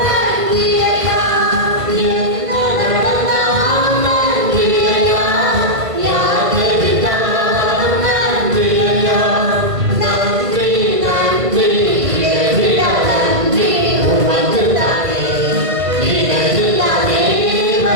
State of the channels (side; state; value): left; late; 1.5 ms